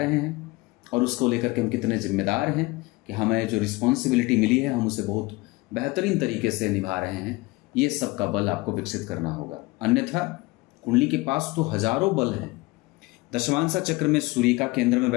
हैं, और उसको लेकर के हम कितने जिम्मेदार हैं कि हमें जो रिस्पॉन्सिबिलिटी मिली है हम उसे बहुत बेहतरीन तरीके से निभा रहे हैं। ये सब का बल आपको विकसित करना होगा, अन्यथा कुंडली के पास तो हजारों बल हैं। दशमांशा चक्र में सूर्य का केंद्र में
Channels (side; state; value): right; quieter; 22.6 dB